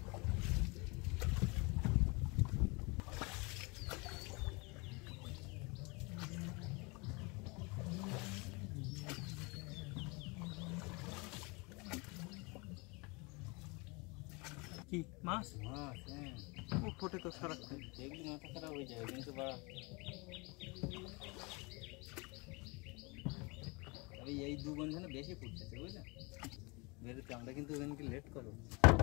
কি মাছ? মাছ ও ফোটে তো সারাক্ষণ, দেখলি মাথা খারাপ হয়ে যায় কিন্তু এই দু বন্ধনে বেশি ফুটতেছে বুঝলে বেরোতে। আমরা কিন্তু ওখানকে লেট করবো।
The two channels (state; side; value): quieter; right; 28.3 dB